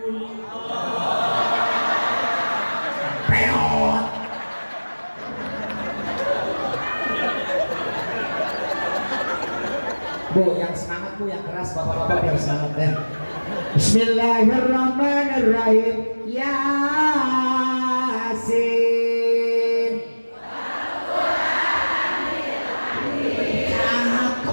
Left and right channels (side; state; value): both; inverted; correlation -1.00